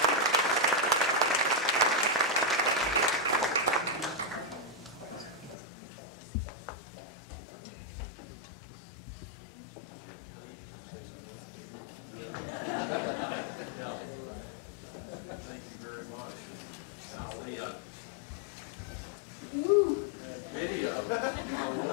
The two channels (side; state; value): right; drops out; at 5.6 s